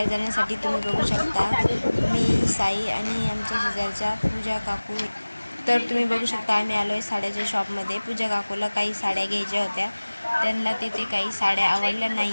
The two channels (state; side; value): inverted; both; correlation -1.00